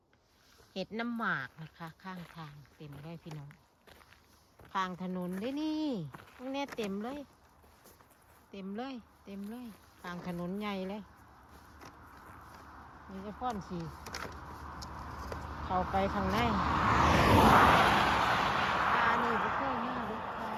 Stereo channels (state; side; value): identical; both; correlation 1.00